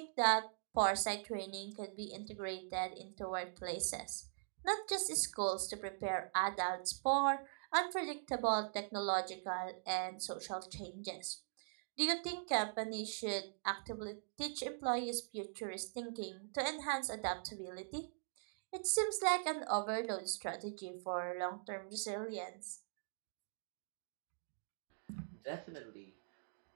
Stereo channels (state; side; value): silent; left; digital silence